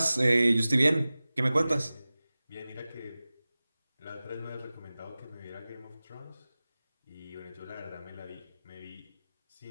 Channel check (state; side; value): inverted; both; correlation -0.97